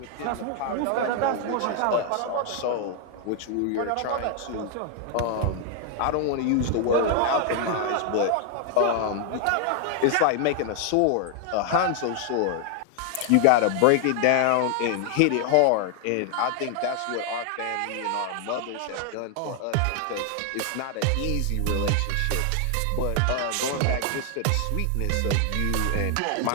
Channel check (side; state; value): both; different; correlation 0.00